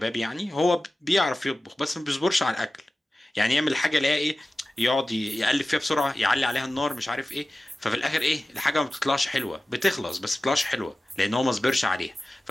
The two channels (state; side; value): normal; both; correlation 0.96